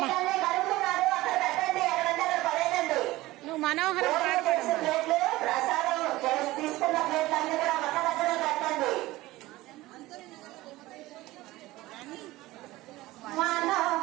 నువ్వు మనోహరం పాడబడమ్మా.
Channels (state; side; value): quieter; left; 18.3 dB